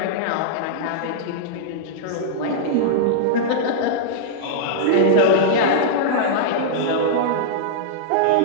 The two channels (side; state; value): both; different; correlation -0.02